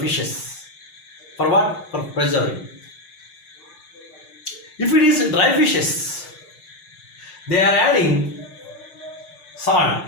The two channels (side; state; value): right; late; 6.6 ms